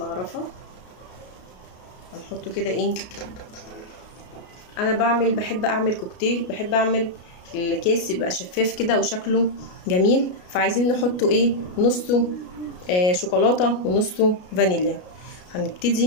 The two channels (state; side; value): late; right; 33 ms